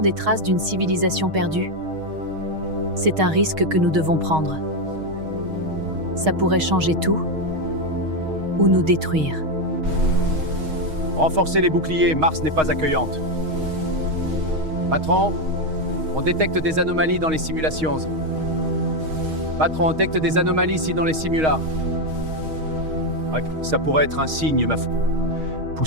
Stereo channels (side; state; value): left; late; 6.4 ms